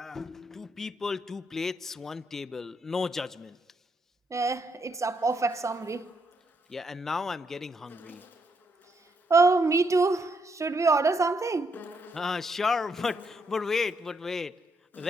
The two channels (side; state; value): both; normal; correlation 0.76